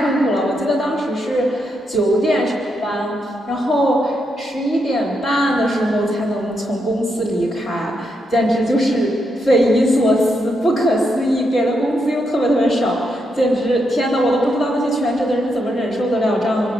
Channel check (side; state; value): both; normal; correlation 0.81